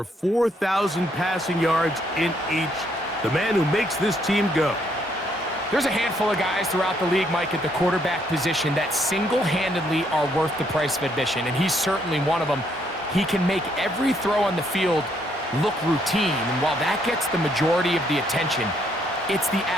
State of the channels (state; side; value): normal; both; correlation 0.71